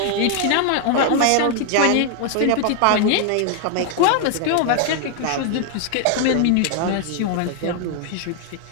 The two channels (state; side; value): different; both; correlation 0.00